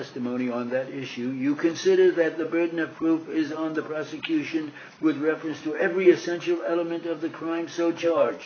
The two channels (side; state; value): both; identical; correlation 1.00